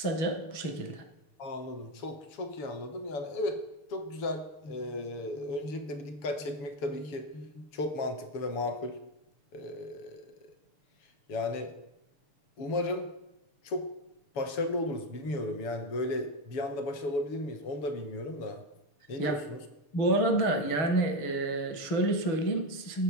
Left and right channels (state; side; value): late; right; 6.8 ms